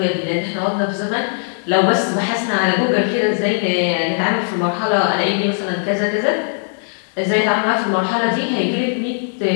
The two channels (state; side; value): silent; right; digital silence